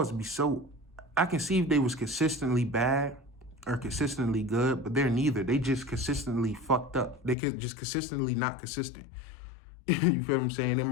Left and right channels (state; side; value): drops out; right; at 7.4 s